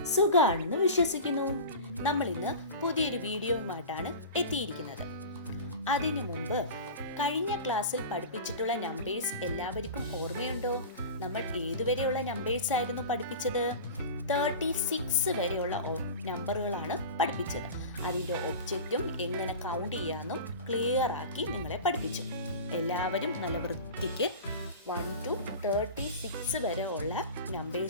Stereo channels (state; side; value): inverted; both; correlation -0.33